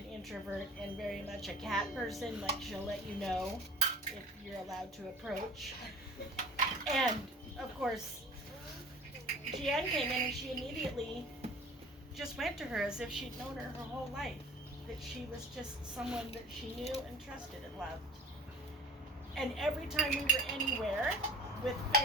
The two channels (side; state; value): both; normal; correlation 0.45